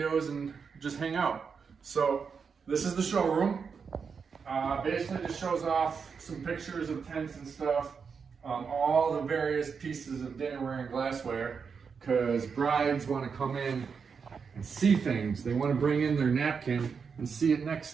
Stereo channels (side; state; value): left; quieter; 5.9 dB